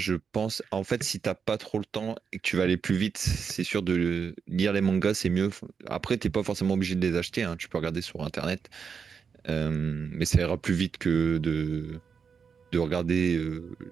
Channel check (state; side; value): quieter; left; 6.2 dB